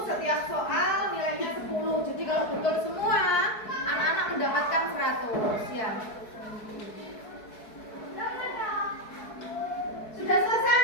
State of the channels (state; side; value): late; right; 4.6 ms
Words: setiap soal nilainya 10. Jadi kalau betul semua, anak-anak mendapatkan 100 ya. Sudah selesai